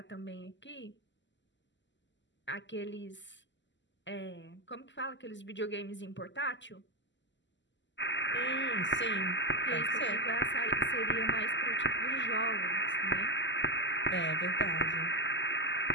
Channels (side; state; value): right; late; 0.53 ms